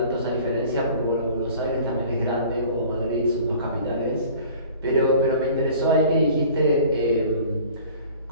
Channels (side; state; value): both; inverted; correlation -0.47